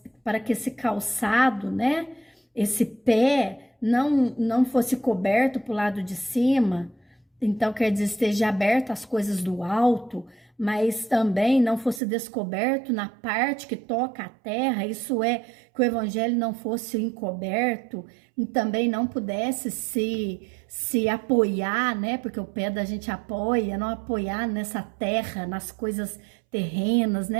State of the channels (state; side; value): drops out; left; at 12.0 s